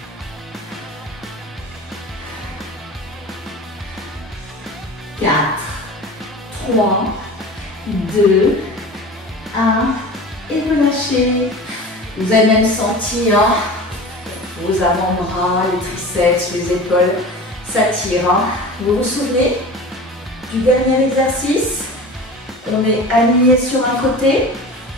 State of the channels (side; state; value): both; normal; correlation 0.35